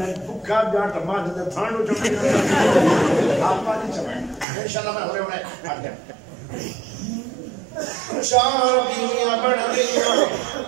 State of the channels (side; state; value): left; drops out; at 4.5 s